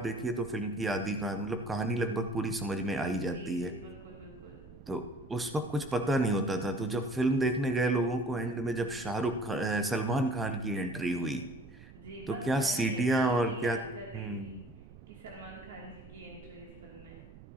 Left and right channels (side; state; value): right; noise; rumble, 19 dB below the sound